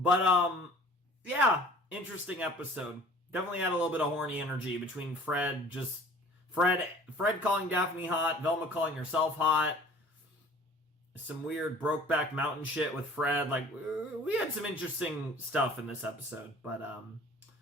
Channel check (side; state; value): both; normal; correlation 0.48